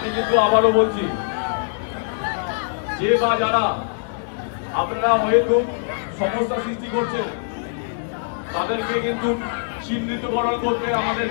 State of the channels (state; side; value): silent; right; digital silence